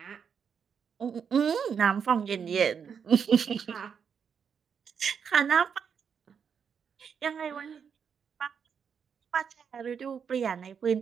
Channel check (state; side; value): quieter; left; 6.9 dB